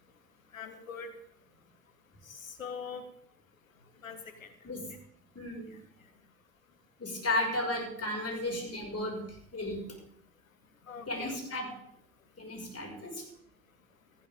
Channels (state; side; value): normal; both; correlation -0.08